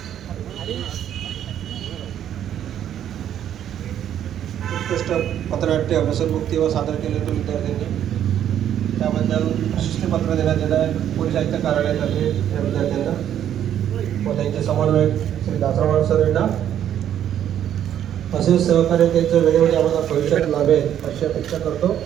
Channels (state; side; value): quieter; left; 10.3 dB